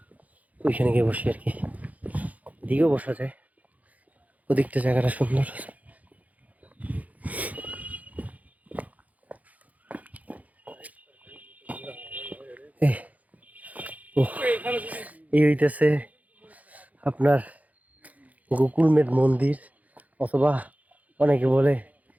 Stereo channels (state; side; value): late; left; 0.075 ms